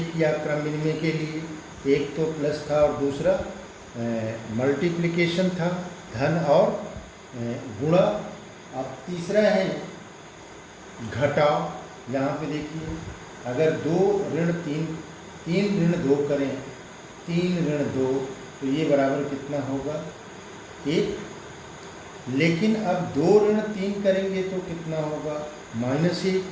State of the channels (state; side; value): identical; both; correlation 1.00